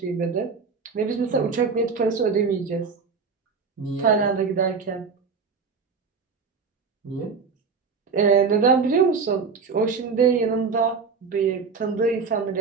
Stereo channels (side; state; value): left; quieter; 5.2 dB